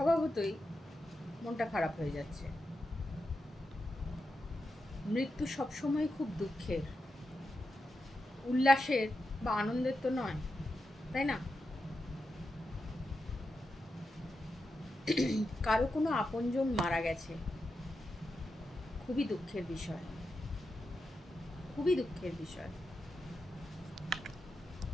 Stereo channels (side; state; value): both; normal; correlation 0.88